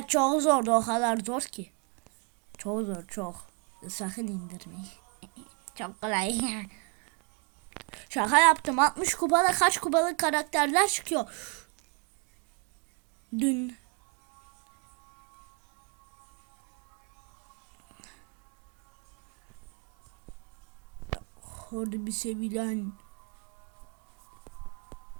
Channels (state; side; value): quieter; left; 34.6 dB